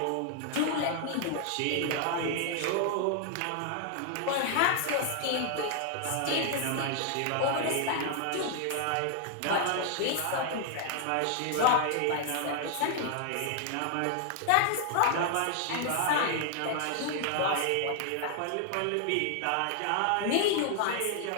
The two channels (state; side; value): different; both; correlation 0.00